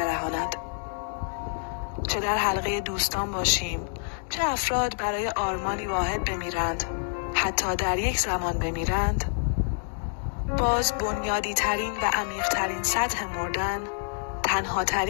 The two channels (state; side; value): silent; right; digital silence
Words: چه در حلقه دوستان باشیم، چه افراد برای آرمانی واحد بمیرند، حتی در یک زمان بمیرند، باز بنیادی ترین و عمیق ترین سطح مردن تنها